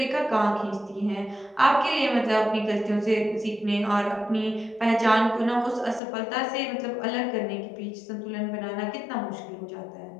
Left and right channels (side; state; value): right; drops out; at 6.0 s